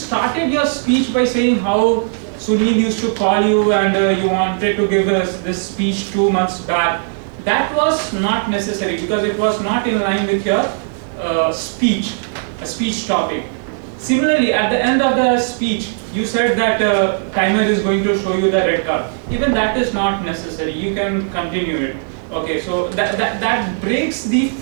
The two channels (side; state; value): left; silent; digital silence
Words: your speech by saying how Sunil used to call you and you wanted to give us this speech 2 months back. That was not necessary because it was not in line with your speech, a speech topic. Similarly, at the end of the speech, you said that timer is going to show you the red card. Even that is not necessary. You can continue it. Okay, so that breaks the